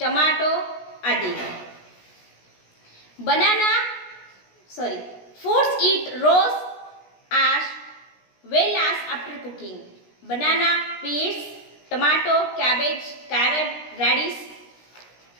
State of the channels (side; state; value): right; late; 16 ms